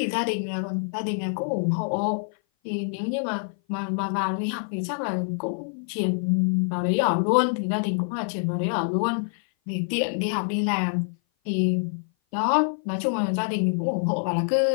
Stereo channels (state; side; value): silent; right; 57 dB below the other